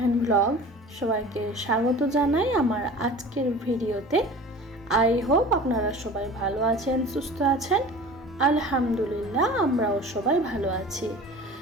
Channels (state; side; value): normal; both; correlation 0.40